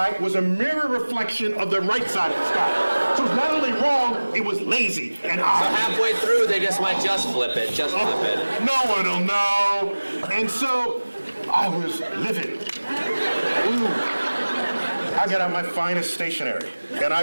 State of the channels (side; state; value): both; inverted; correlation -1.00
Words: was a mirror reflection of the right side of the sky. So it was not only wrong, it was lazy and So odd. halfway through, they just might just flip it. No one will know. And so I was livid. Ooh. I got out my finest stationery and